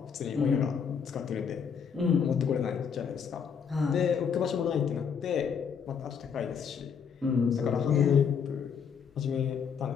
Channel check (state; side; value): quieter; right; 6.8 dB